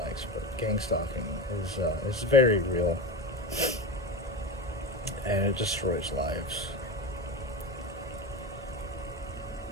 likes, but gang stalking is very real, and it destroys lives.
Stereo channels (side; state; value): both; normal; correlation 0.22